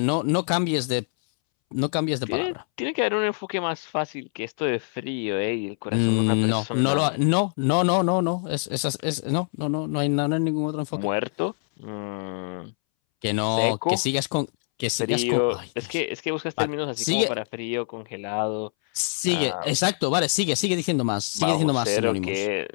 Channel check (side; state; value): right; silent; 62 dB below the other